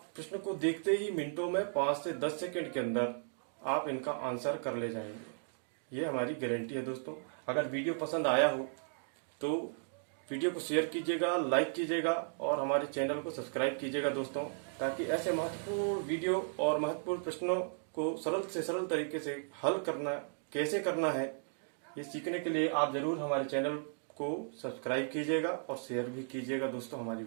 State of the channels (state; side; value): silent; left; digital silence